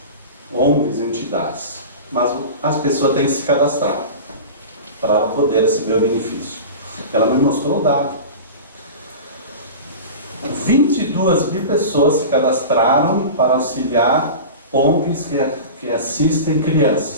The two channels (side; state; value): both; inverted; correlation -0.31